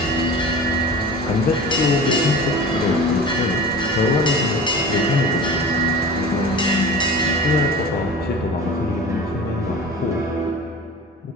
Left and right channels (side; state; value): both; normal; correlation 0.37